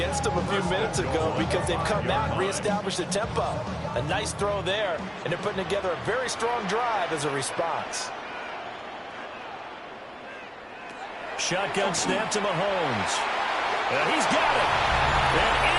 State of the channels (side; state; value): both; identical; correlation 1.00